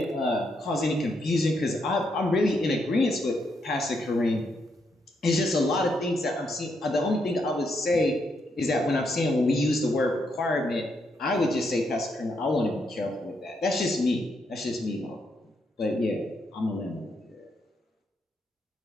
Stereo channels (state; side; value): normal; both; correlation 0.78